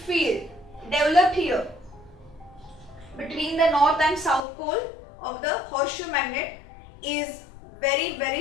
developed here between the north and south pole of the horseshoe magnet is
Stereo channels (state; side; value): drops out; right; at 4.4 s